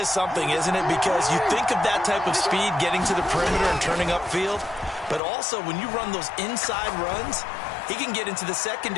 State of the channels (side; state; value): right; drops out; at 5.2 s